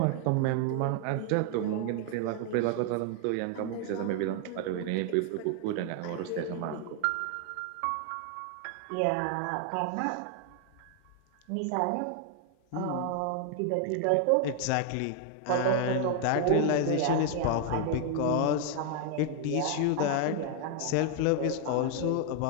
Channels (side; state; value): both; different; correlation 0.00